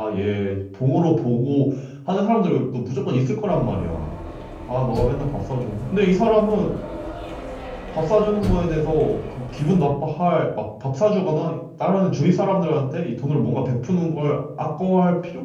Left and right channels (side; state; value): both; identical; correlation 1.00